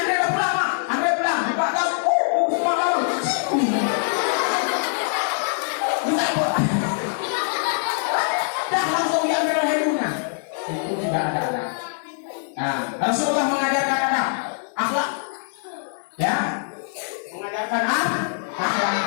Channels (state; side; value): silent; right; 63 dB below the other